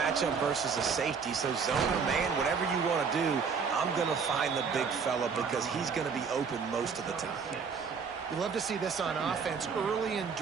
versus a safety, so zone or man, whatever you want to do, I'm going to find the big fella because he's going to be open most of the time. You love to see this on offense. Early in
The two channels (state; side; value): quieter; left; 5.8 dB